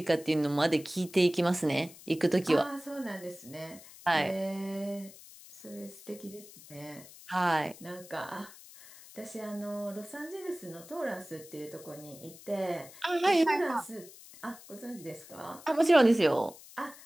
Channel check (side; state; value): left; noise; hiss, 19 dB below the sound